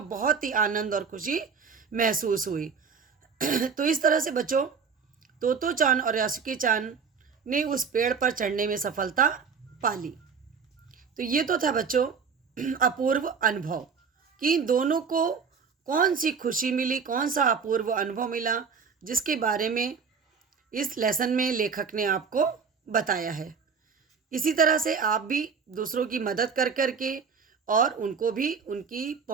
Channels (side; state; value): left; quieter; 5.8 dB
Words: बहुत ही आनंद और खुशी महसूस हुई। तो इस तरह से बच्चों तोतो चान और यासुकी चान ने उस पेड़ पर चढ़ने में सफलता पाली। तो ये तो था बच्चों अपूर्व अनुभव कि दोनों को कौन सी खुशी मिली, कौन सा अपूर्व अनुभव मिला, जिसके बारे में इस लेसन में लेखक ने आपको बताया है। इसी तरह से आप भी दूसरों की मदद कर करके और उनको भी